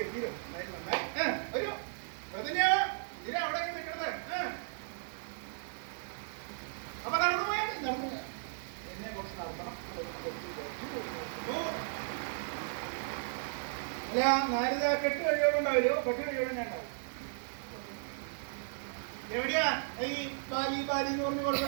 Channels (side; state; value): left; silent; digital silence